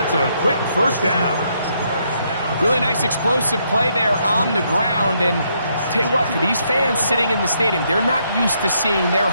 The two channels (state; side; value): inverted; both; correlation -0.74